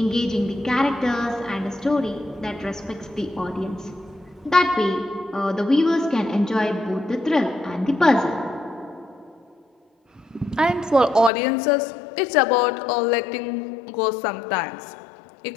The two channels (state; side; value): drops out; right; at 11.3 s